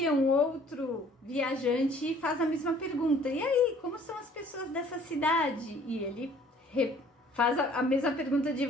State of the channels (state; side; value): normal; both; correlation 0.55